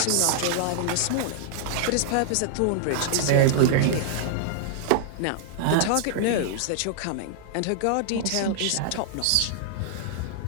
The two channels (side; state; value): both; different; correlation -0.01